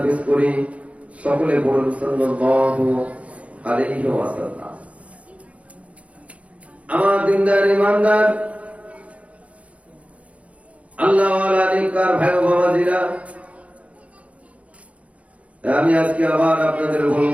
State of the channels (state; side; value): late; left; 0.065 ms